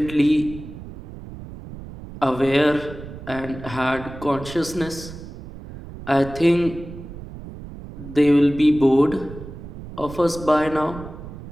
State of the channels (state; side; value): noise; right; rumble, 13 dB below the sound